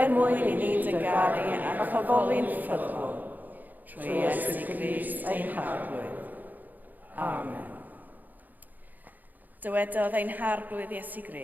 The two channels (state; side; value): late; left; 0.084 ms